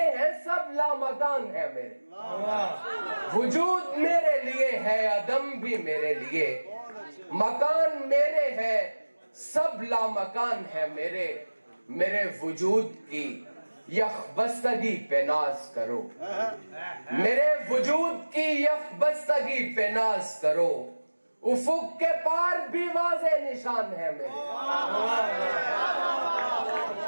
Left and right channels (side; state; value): both; inverted; correlation -1.00